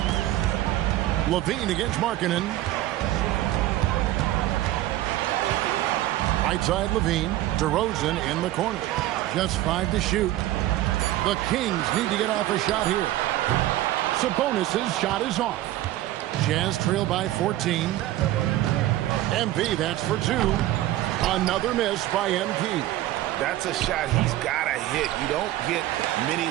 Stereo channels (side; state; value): left; quieter; 14.9 dB